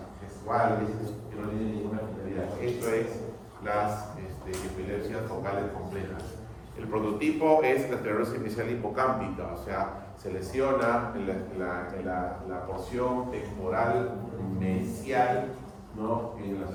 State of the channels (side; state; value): both; identical; correlation 1.00